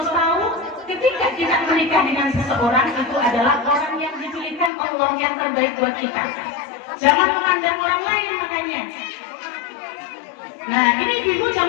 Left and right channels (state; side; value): drops out; right; at 4.7 s